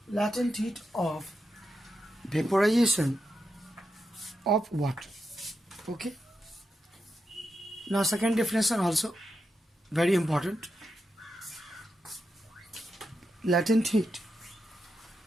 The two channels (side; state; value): both; normal; correlation 0.86